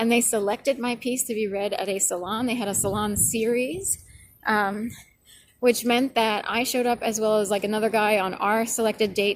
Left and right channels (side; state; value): both; identical; correlation 1.00